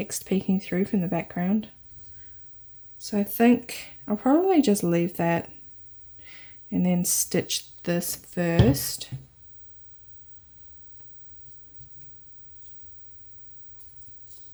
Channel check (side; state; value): both; identical; correlation 1.00